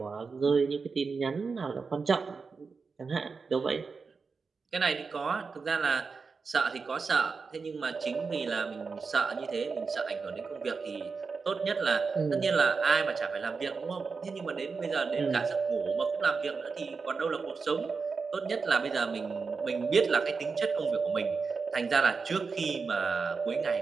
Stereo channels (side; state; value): left; quieter; 4.8 dB